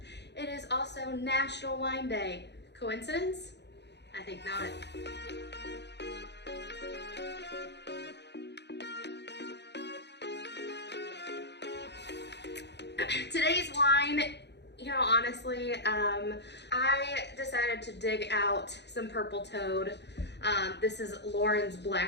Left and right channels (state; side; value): late; right; 0.50 ms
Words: it is also National Wine Day. Coincidence? I think not. Today's wine, honestly, I decided to dig out some Purple Toad. This is Lauren's